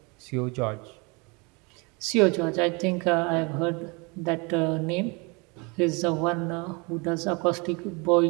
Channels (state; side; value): quieter; left; 29.5 dB